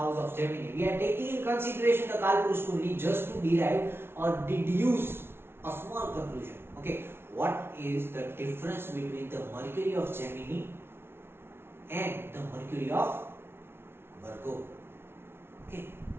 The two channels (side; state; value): left; late; 0.12 ms